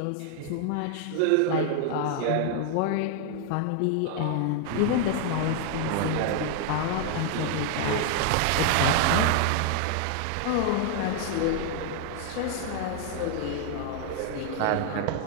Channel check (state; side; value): different; both; correlation 0.00